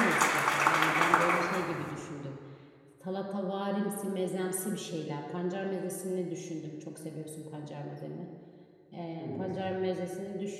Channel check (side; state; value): both; identical; correlation 1.00